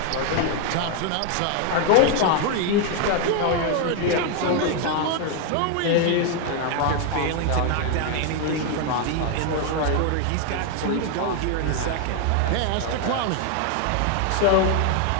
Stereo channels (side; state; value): both; different; correlation 0.01